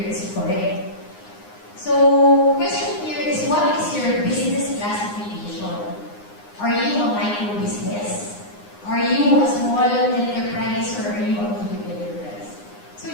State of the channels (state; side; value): late; right; 9.7 ms